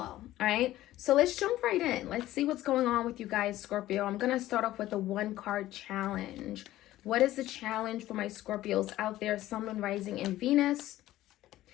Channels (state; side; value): quieter; right; 15.1 dB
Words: All right, so let's jump right in. Let's see what's going on with you guys, Scorpio. I'm going to start off with a one card challenge. What is the challenge for my Scorpios out there, Sun, Moon, Rising, and Venus?